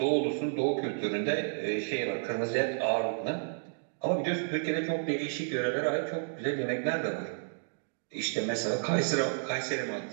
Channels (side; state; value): left; silent; digital silence